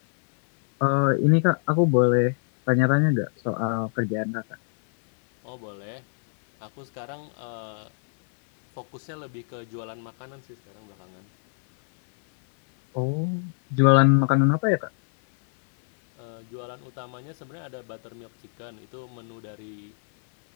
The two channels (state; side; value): silent; right; 58 dB below the other